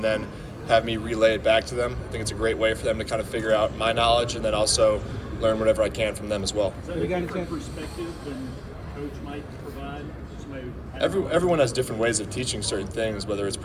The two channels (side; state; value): both; identical; correlation 1.00